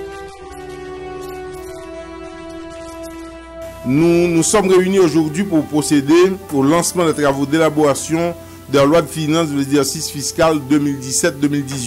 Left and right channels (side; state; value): both; identical; correlation 1.00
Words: a soutenu le ministre Bastien en introduisant ces travaux. Nous nous sommes réunis aujourd'hui pour procéder au lancement des travaux d'élaboration de la loi de finances de l'exercice fiscal